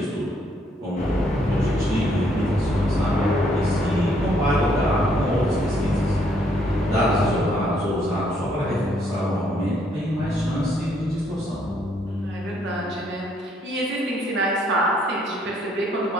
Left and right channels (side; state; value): both; normal; correlation 0.69